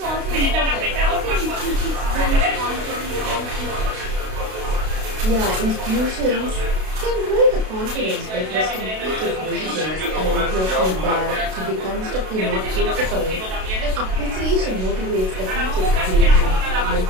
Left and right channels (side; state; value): left; late; 32 ms